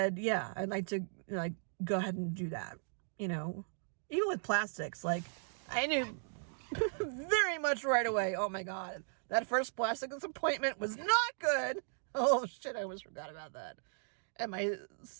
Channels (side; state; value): left; silent; digital silence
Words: yeah, I'd like to, like, go ahead and do that. You know, even with plastics, like, I knew very much right away, oh my God, that first plastics appointment was not good. Oh shit, I almost forgot about that. And my